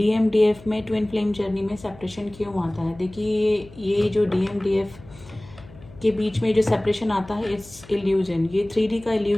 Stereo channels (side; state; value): left; noise; hum, 21 dB below the sound